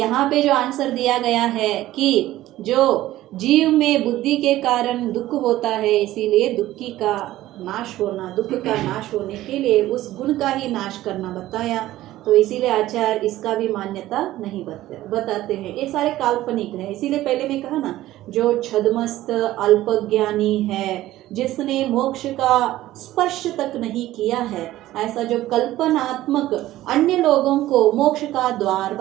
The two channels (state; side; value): quieter; left; 15.3 dB